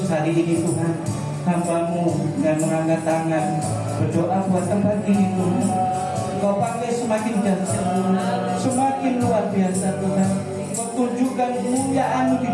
hari ini Tuhan, hamba-Mu dengan mengangkat tangan berdoa buat tempat ini Tuhan. Kau pakai semakin dahsyat Tuhan, semakin luar biasa Tuhan. Kau tunjukkan kemuliaan-Mu di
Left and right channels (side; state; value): both; identical; correlation 1.00